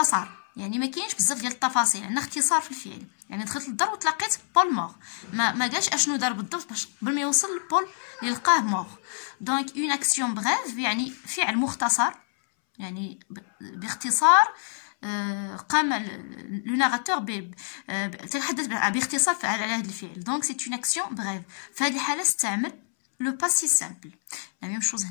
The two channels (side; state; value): right; silent; 60 dB below the other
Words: يعني ما كاينش بزاف ديال التفاصيل، عندنا اختصار في الفعل. يعني دخلت للدار وتلقيت بول مور، ما قالش اشنو دار بالضبط باش قبل ما يوصل لبول اللي لقاه مور. دونك اون اكسيون بغيف يعني فعل مختصر، يعني باختصار قام لو ناراتور تحدث باختصار على هذا الفعل. دونك سي اون اكسيون بغيف. في هذه الحاله استعمل لو باسي سامبل. لا ميم شوز